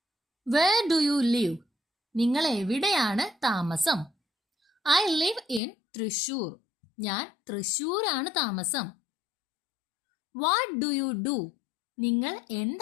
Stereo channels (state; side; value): drops out; right; at 5.6 s